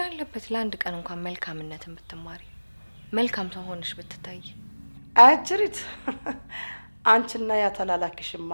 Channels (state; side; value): inverted; both; correlation -1.00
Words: አለበት ለአንድ ቀን እንኳን መልካምነትን ብትማሪ፣ መልካም ሰው ሆነሽ ብትታይ። አጅሪት አንቺና ያ ተላላኪሽማ